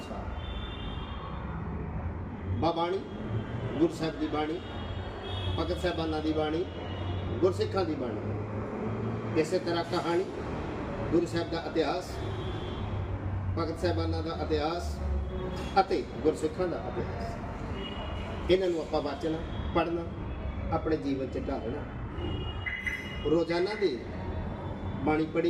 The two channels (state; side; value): identical; both; correlation 1.00